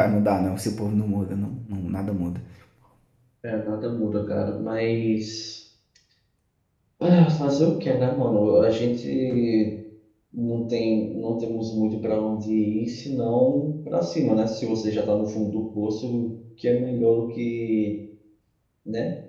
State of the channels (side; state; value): both; identical; correlation 1.00